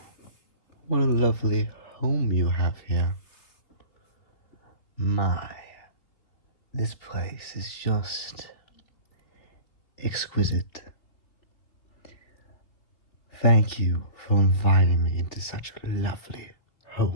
What a lovely home you have here. My, this place is just exquisite. Thank you for inviting me into such a lovely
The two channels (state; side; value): late; right; 3.2 ms